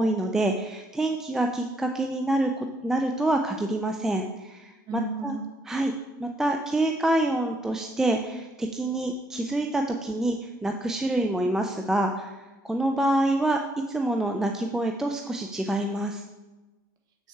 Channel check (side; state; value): both; normal; correlation 0.74